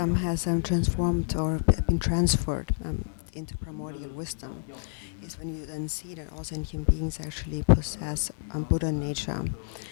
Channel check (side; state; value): right; silent; 59 dB below the other